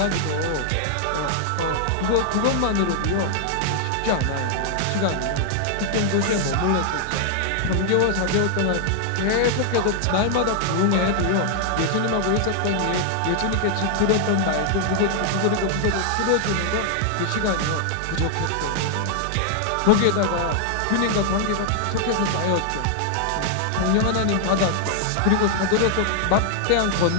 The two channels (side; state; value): both; different; correlation -0.01